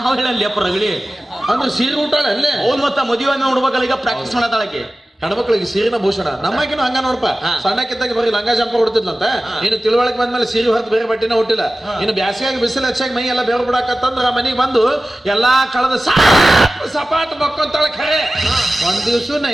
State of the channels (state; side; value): normal; both; correlation 0.96